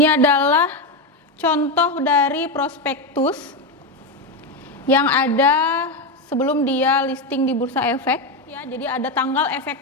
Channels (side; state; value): both; normal; correlation 0.11